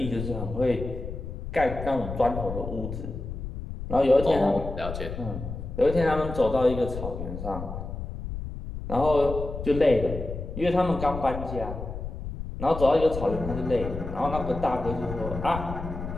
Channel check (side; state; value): left; noise; rumble, 7 dB below the sound